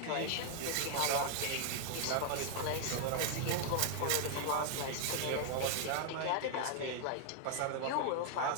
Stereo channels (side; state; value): both; different; correlation 0.00